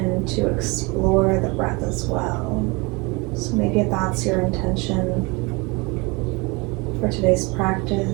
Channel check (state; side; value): quieter; left; 27.2 dB